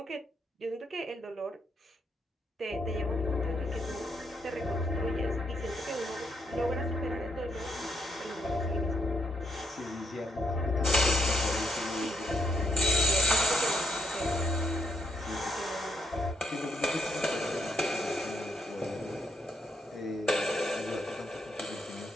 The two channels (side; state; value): both; normal; correlation 0.76